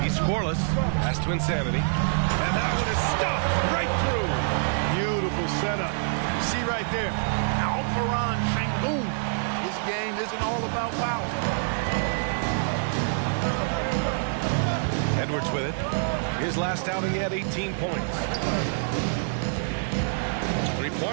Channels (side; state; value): left; silent; digital silence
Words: He's scoreless. Pass to Insanity. And that one is stuffed right through. Beautiful setup. You see right there, Alperen Sengun is game isn't all about power. Edwards with it. His last outing, he had 18 points.